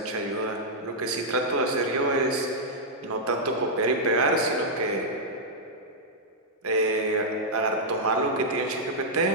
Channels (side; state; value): both; normal; correlation -0.07